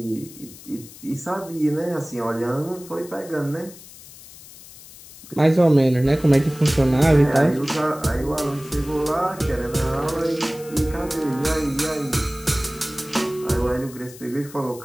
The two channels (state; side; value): noise; left; hiss, 19 dB below the sound